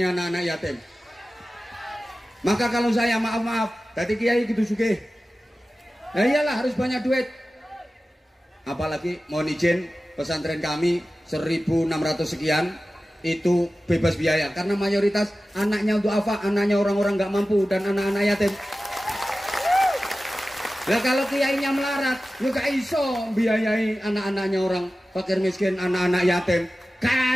anak-anak yatim? Maka kalau saya maaf, tadi kiai gitu sugih. Nah iyalah harus banyak duit. Apalagi mohon izin, pesantren kami 1.600 sekian itu bebas biaya karena mayoritas anaknya untuk apa? Anaknya orang-orang nggak mampu dan anak-anak yatim. Lah kalau kiainya melarat, juga iso biayai anak-anaknya orang fakir miskin, anak-anak yatim.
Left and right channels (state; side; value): normal; both; correlation 0.95